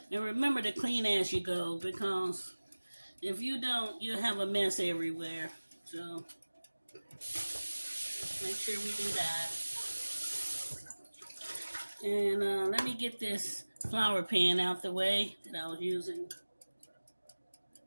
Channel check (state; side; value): inverted; both; correlation -1.00